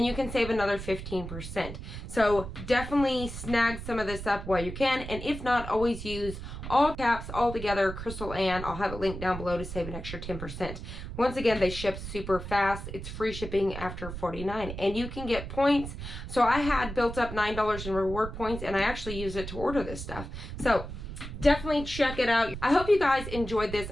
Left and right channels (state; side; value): noise; right; rumble, 9 dB below the sound